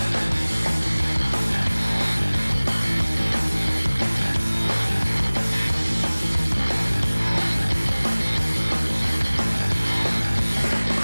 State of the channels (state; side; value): inverted; both; correlation -0.99